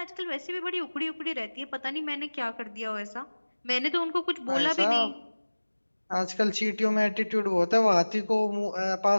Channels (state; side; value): inverted; both; correlation -1.00